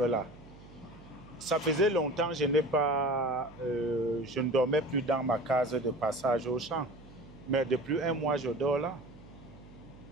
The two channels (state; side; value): noise; right; hum, 20 dB below the sound